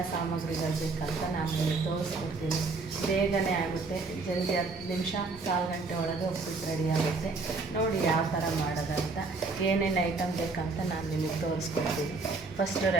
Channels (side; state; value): left; quieter; 4.0 dB